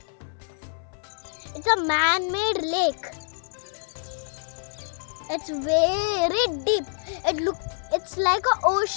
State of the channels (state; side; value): silent; right; digital silence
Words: It's a man-made lake. It's very deep. It's like an